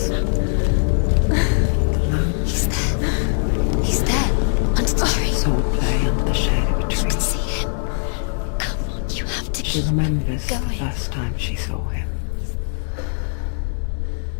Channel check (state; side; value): silent; right; 65 dB below the other